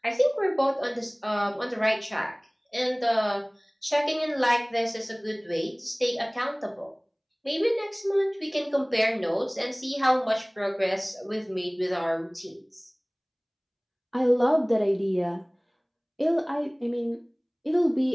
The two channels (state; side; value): identical; both; correlation 1.00